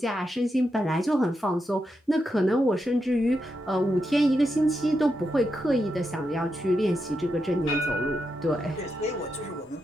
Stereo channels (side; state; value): both; normal; correlation 0.85